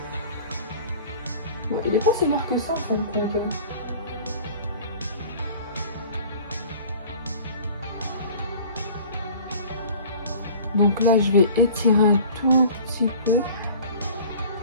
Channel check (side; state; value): both; inverted; correlation -0.45